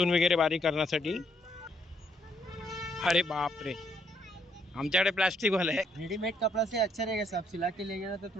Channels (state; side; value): normal; both; correlation 0.71